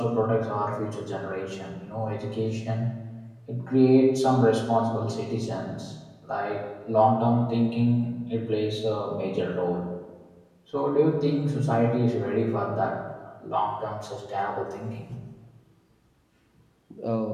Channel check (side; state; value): both; identical; correlation 1.00